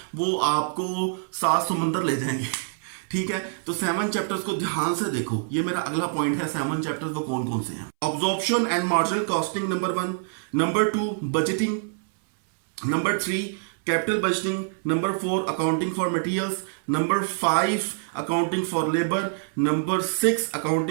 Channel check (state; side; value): silent; left; 61 dB below the other